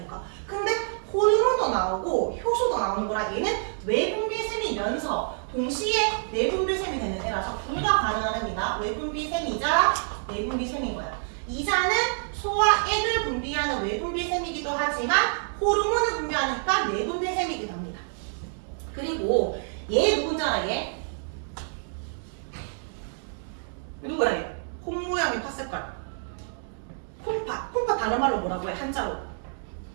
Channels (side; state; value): left; silent; digital silence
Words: 근데 호르몬도 나오고 효소도 나오는 거라 얘는 외분비샘이면서 동시에 내분비샘이 되는 애라서 둘 다 가능한 애입니다. 외분비샘이자 내분비샘인 거야. 이자는 소화액을 분비하는 외분비샘이기도 하지만 호르몬을 분비하니까 내분비샘이기도 합니다. 그리고 얘 누군지 알아? 얘? 누구야 얘? 콩 모양의 팥색깔. 콩팥. 콩팥 다른 말로 뭐라고 해? 한자로.